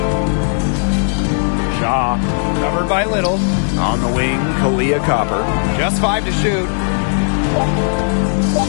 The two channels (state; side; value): silent; right; 59 dB below the other